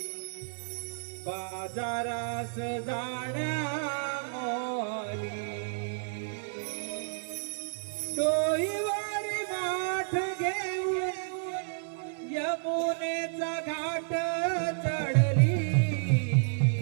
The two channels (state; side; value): silent; left; 55 dB below the other